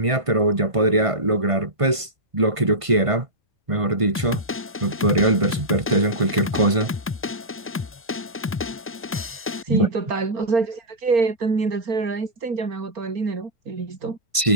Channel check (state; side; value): normal; both; correlation -0.11